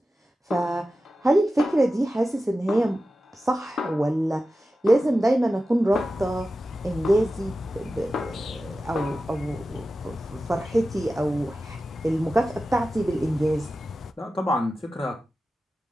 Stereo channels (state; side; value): normal; both; correlation 0.93